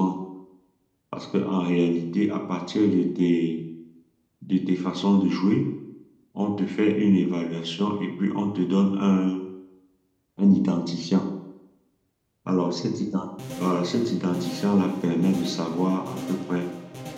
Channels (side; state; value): both; identical; correlation 1.00